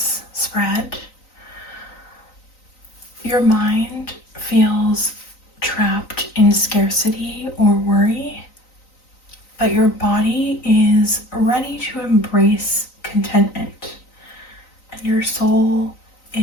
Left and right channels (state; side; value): late; right; 3.9 ms